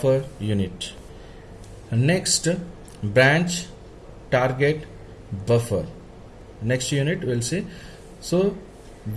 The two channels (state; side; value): identical; both; correlation 1.00